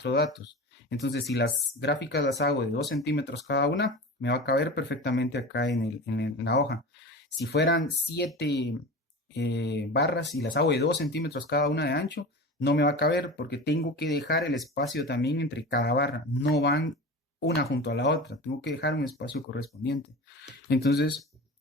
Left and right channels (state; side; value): normal; both; correlation 0.31